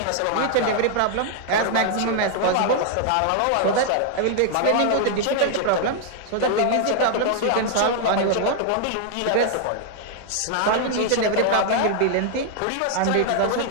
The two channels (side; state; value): both; different; correlation 0.00